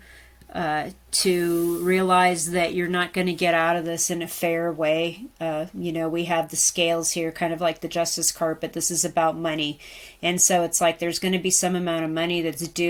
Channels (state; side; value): identical; both; correlation 1.00